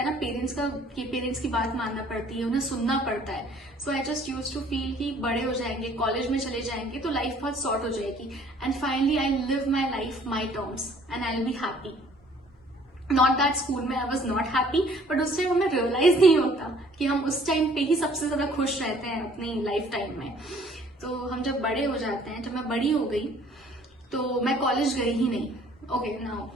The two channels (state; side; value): normal; both; correlation 0.57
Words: ना पेरेंट्स की बात मानना पड़ती है, उन्हें सुनना पड़ता है। So I just use to feel कि बड़े हो जाएंगे, कॉलेज में चले जाएंगे तो लाइफ बहुत सॉर्ट हो जाएगी and finally I live my life my terms and I will be happy. Not that school में I was not happy, but उस टाइम हमें रियलाइज नहीं होता कि हम उस टाइम पे ही सबसे ज्यादा खुश रहते हैं अपनी लाइफ टाइम में। तो हम जब बड़े हो जाते हैं, जब मैं बड़ी हो गई तो मैं कॉलेज गई ही नहीं। Okay, now